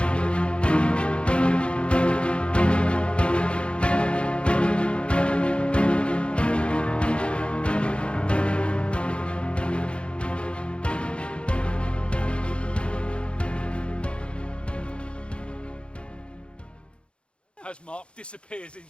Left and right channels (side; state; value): right; late; 0.058 ms